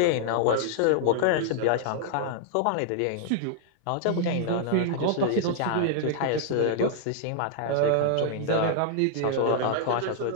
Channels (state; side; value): different; both; correlation -0.01